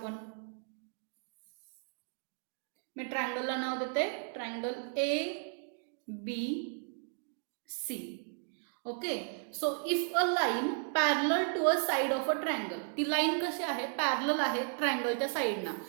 मी ट्रायंगलला नाव देते triangle ABC. Okay, so if a line parallel to a side of a triangle, ती लाईन कशी आहे पॅरलल आहे ट्रायंगलच्या साईडना,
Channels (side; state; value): left; silent; 55 dB below the other